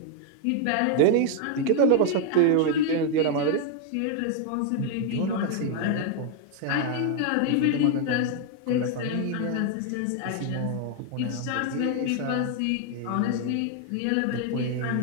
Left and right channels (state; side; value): different; both; correlation 0.00